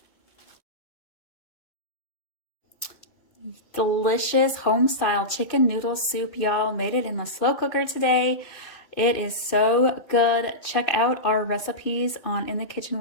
Delicious home-style chicken noodle soup, y'all. Made it in the slow cooker today. It is so good. Check out our recipes on In the Kitchen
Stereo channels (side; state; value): right; late; 2.6 ms